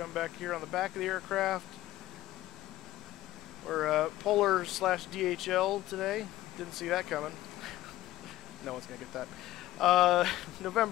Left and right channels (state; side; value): quieter; right; 15.6 dB